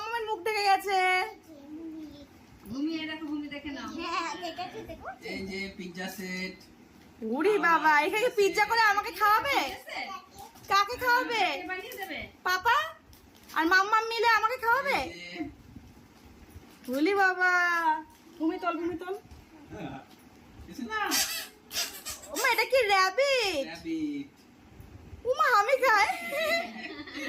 মুখ দেখে গেছে। ঘুমিয়ে দেখো, ঘুমিয়ে দেখে নাও। এই যে পিৎজা সেট। ওরে বাবা, এখানে পিৎজা করে আমাকে খাওয়াবে? কাকে খাওয়াবে? বানিয়ে দেবে। পাপা আর মাম্মাম মিলে আমাকে খাওয়াবে? বলি বাবা, ঘুমি তোল, ঘুমি তোল। ওমা, এটা কি র‍্যাবিট? উমা, আমি খাই,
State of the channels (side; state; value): both; identical; correlation 1.00